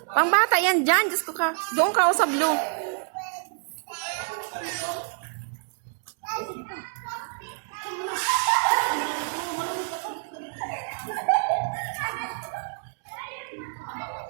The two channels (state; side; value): silent; left; digital silence